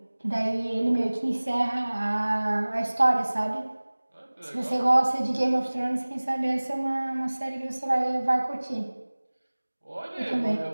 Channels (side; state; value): both; inverted; correlation -1.00